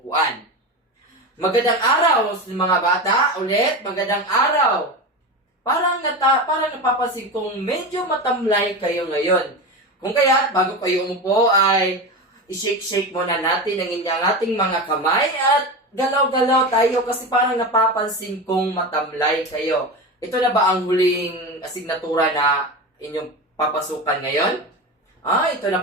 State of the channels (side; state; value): both; normal; correlation 0.23